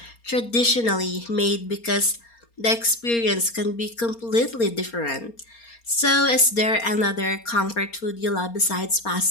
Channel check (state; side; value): late; right; 4.3 ms